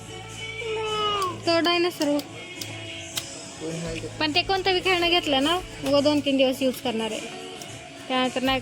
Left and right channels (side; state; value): both; identical; correlation 1.00